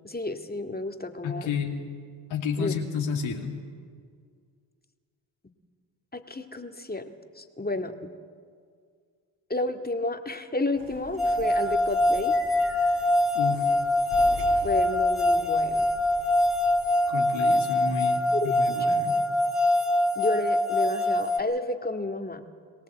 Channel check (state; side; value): normal; both; correlation 0.74